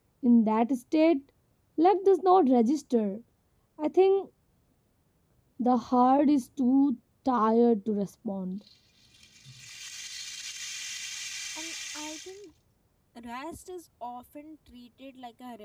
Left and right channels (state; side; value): identical; both; correlation 1.00